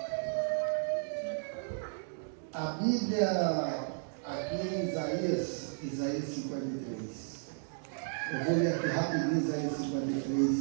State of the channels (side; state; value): left; silent; digital silence